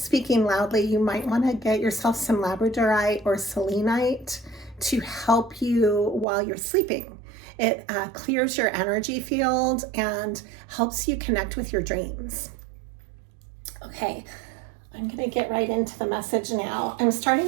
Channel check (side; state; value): left; drops out; at 6.2 s